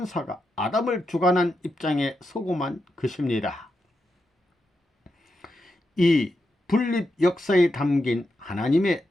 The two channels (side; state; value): both; normal; correlation 0.86